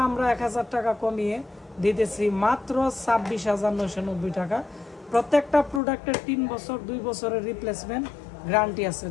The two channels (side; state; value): right; drops out; at 5.8 s